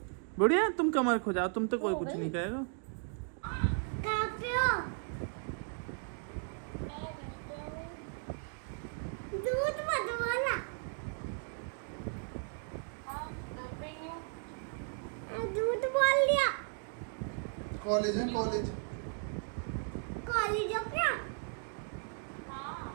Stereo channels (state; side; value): silent; left; 54 dB below the other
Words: बढ़िया, तुम कमर खो जाओ, तुम तो कोई कुछ नहीं कहेगा। दूध मत बोला, दूध बोल लिया। कॉलेज है, कॉलेज कॉलेज हो क्या?